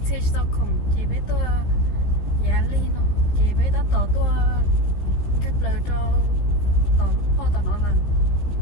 xe sao không chị bé tôi giá ly nó chị bé đã tỏ tôi cái lời cho tỏ lúc po tỏ nó là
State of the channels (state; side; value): late; right; 15 ms